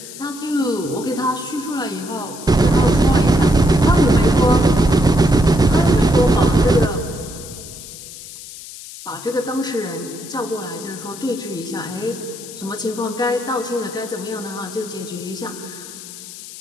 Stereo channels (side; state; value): left; noise; hiss, 14 dB below the sound